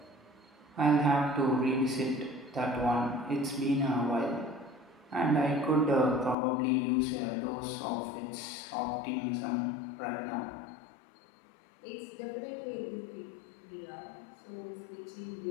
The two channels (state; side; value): drops out; right; at 6.4 s